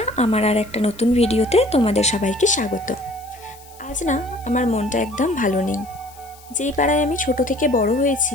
আমার আর একটা নতুন ভিডিওতে তোমাদের সবাইকে স্বাগত। আজ না আমার মনটা একদম ভালো নেই। যেই পাড়ায় আমি ছোট থেকে বড়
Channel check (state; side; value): noise; left; hiss, 24 dB below the sound